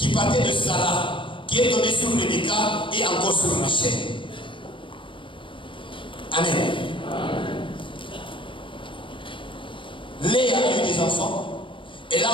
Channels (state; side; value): late; right; 0.25 ms